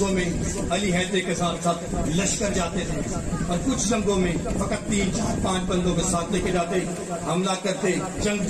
میں علی حیدر کے ساتھ ساتھ لشکر جاتے تھے، اور کچھ جنگوں میں فقط 3 4 5 بندوں کے ساتھ لے کے جاتے، حملہ کرتے، جنگ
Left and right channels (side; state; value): both; identical; correlation 1.00